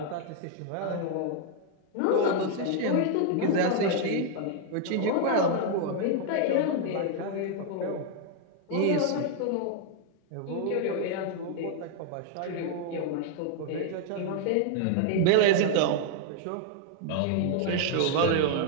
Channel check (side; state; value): both; different; correlation 0.00